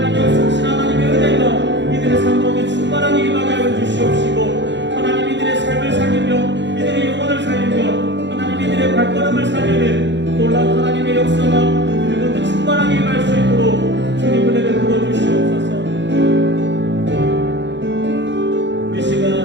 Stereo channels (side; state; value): left; late; 0.52 ms